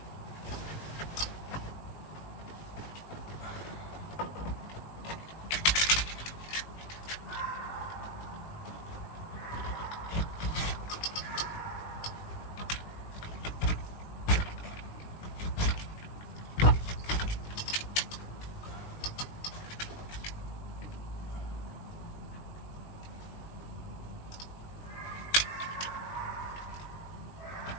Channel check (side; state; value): right; late; 19 ms